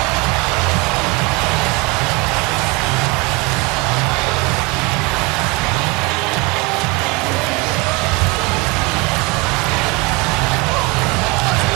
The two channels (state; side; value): quieter; left; 25.3 dB